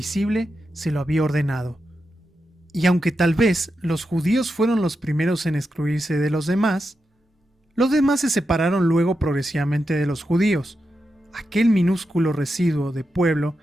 se lo había ordenado. Y aunque tal vez los judíos fueron los primeros en excluirse de los demás se separaron luego progresivamente de los judíos, aquel minúsculo residuo de pueblo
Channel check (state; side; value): normal; both; correlation 0.88